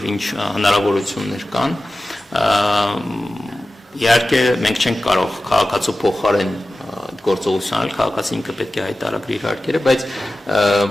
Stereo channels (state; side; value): normal; both; correlation 0.95